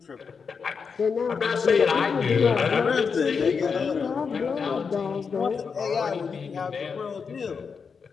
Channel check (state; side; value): quieter; right; 5.7 dB